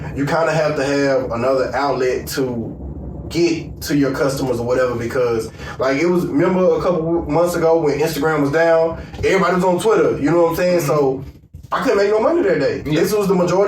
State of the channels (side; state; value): both; identical; correlation 1.00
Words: you kind of have to have another outlet to get to your customers or whatever, because like it was, remember a couple months ago when Instagram was down, everybody was on Twitter, you know what I'm saying? Mm-hmm. So I couldn't make no money that day. Yeah. This was the